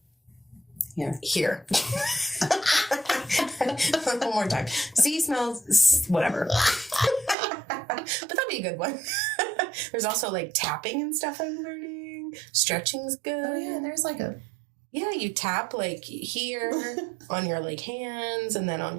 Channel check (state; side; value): drops out; left; at 7.4 s